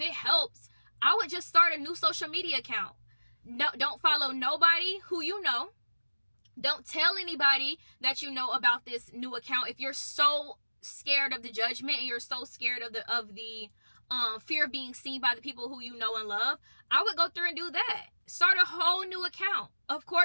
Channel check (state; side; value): inverted; both; correlation -1.00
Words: helps, I would just start a new social media account. No, don't follow nobody who you know. Don't tell anybody that you know about this new account. If you're so scared of the judgment and you're so scared of the fear of being seen by the people who you know and love, I would go through and do that. Start a whole new account. Of